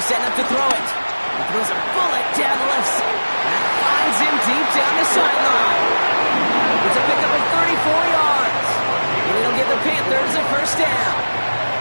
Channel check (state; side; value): inverted; both; correlation -1.00